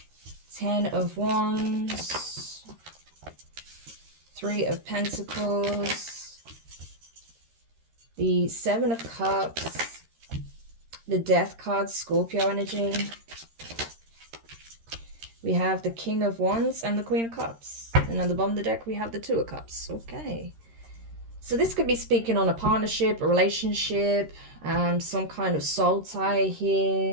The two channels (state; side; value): late; left; 13 ms